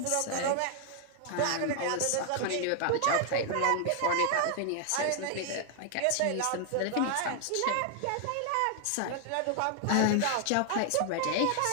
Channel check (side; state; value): both; different; correlation 0.00